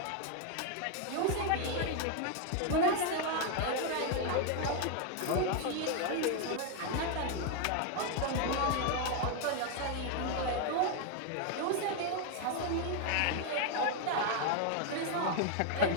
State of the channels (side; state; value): both; different; correlation 0.01